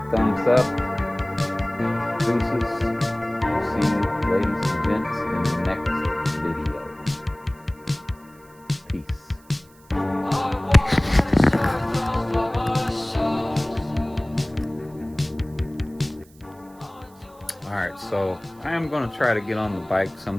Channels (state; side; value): noise; right; hiss, 28 dB below the sound